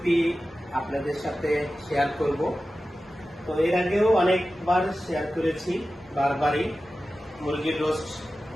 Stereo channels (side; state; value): both; normal; correlation 0.94